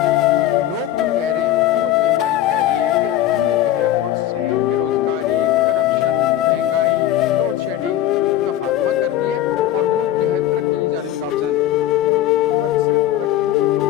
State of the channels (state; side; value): quieter; right; 12.6 dB